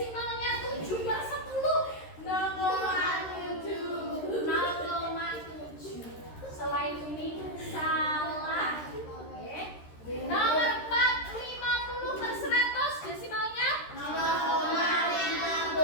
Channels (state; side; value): late; right; 13 ms